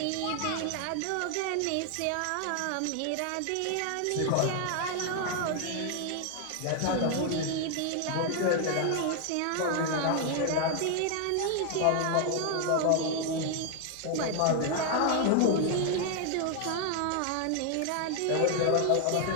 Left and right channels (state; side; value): different; both; correlation 0.00